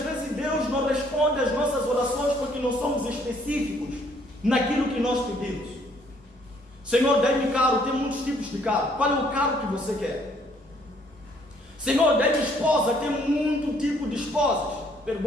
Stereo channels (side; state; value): both; normal; correlation 0.65